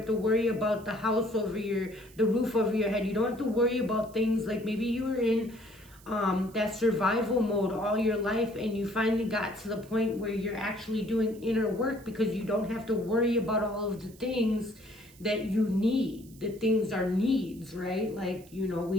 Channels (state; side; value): noise; right; hiss, 24 dB below the sound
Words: to worry about the house over the roof over your head. You don't have to worry about things like maybe you were in that survival mode all your life, and you finally got to the point where you're actually doing inner work because you don't have to worry about all of the things that you need. The things are needs, right? Like, you know,